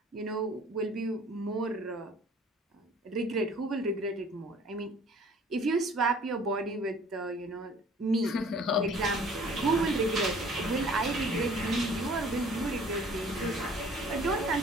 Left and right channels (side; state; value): both; normal; correlation 0.52